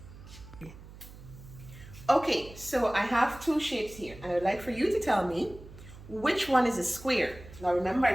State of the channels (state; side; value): noise; right; hum, 17 dB below the sound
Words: Okay, so I have 2 shapes here, and I would like for you to tell me which one is a square. Now remember,